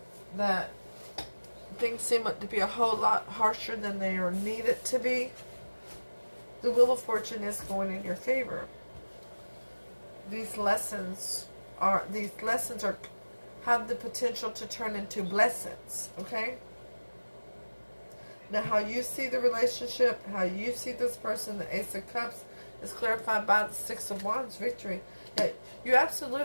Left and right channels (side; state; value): both; inverted; correlation -1.00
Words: that things seem to be a whole lot harsher than they are needed to be, the Wheel of Fortune is going in your favor. These lessons are have the potential to turn into blessings, okay? Now, how you see the relationship, how you see this person, the Ace of Cups, is clarified by the Six of Wands, victory. Yeah, you